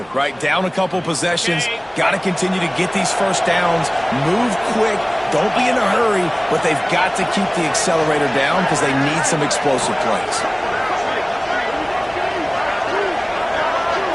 right? Down a couple possessions, got to continue to get these first downs, move quick, don't be in a hurry, but they've got to keep the accelerator down because they need some explosive plays.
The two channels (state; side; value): noise; left; hum, 30 dB below the sound